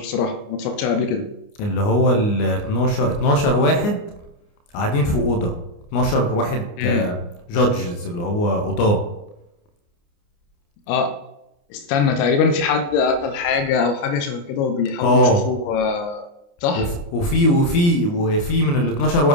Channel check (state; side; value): late; right; 29 ms